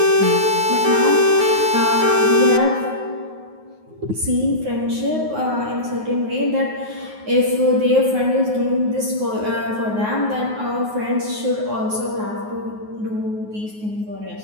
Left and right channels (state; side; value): late; left; 9.5 ms